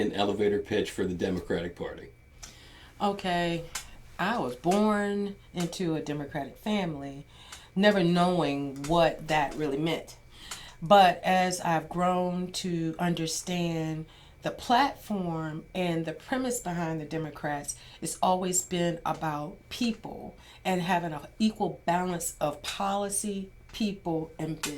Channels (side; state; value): both; identical; correlation 1.00